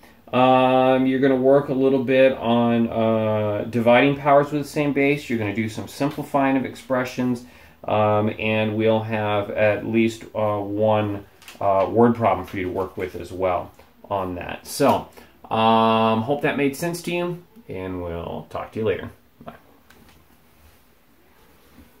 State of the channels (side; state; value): both; identical; correlation 1.00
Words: You're going to work a little bit on dividing powers with the same base. You're going to do some simplifying of expressions, and we'll have at least one word problem for you to work with as well on that. So, hope that made sense to you, and we'll talk to you later.